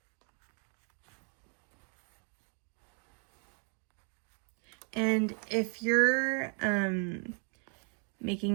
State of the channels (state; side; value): quieter; left; 39.8 dB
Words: And if you're